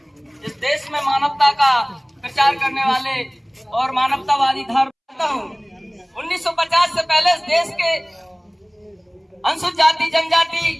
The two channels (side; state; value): both; identical; correlation 1.00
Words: इस देश में मानवता का प्रचार करने वाले और मानवतावादी धर्म करता हूँ। 1950 से पहले इस देश के अनुसूचित जाति,